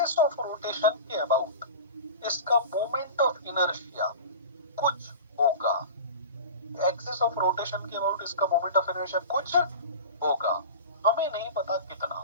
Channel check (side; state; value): both; inverted; correlation -0.33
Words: ऑफ रोटेशन के अबाउट इसका मोमेंट ऑफ इनर्शिया कुछ होगा, एक्सिस ऑफ रोटेशन के अबाउट इसका मोमेंट ऑफ इनर्शिया कुछ होगा, हमें नहीं पता कितना।